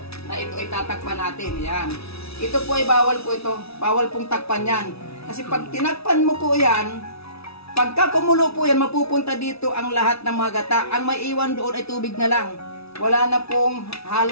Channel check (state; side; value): late; right; 0.78 ms